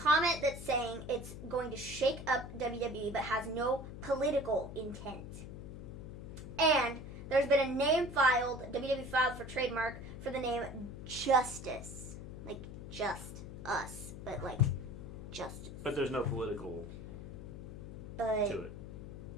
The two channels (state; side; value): noise; left; hum, 10 dB below the sound